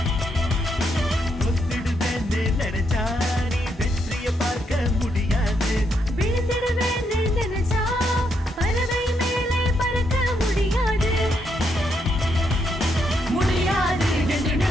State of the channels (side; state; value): both; normal; correlation 0.77